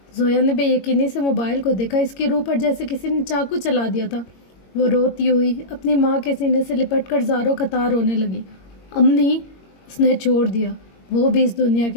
زویا نے بے یقینی سے موبائل کو دیکھا، اس کی روح پر جیسے کسی نے چاقو چلا دیا تھا۔ وہ روتی ہوئی اپنی ماں کے سینے سے لپٹ کر زاروں قطار رونے لگی۔ امی، اس نے چھوڑ دیا، وہ بھی اس دنیا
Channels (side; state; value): right; late; 22 ms